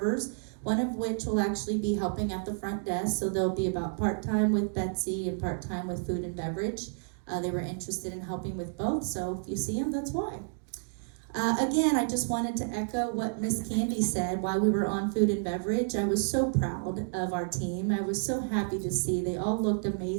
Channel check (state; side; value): silent; left; digital silence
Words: one of which will actually be helping at the front desk. So they'll be about part-time with Betsy and part-time with food and beverage. They were interested in helping with both, so if you see them, that's why. Again, I just wanted to echo what Miss Candy said while we were on food and beverage. I was so proud of our team. I was so happy to see they all looked